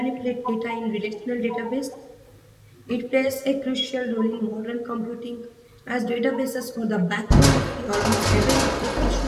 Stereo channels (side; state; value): both; identical; correlation 1.00